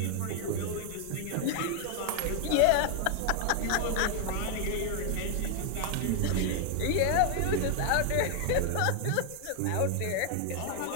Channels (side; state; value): both; different; correlation 0.00